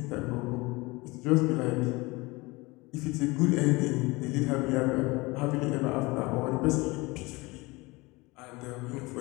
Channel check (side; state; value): right; quieter; 23.5 dB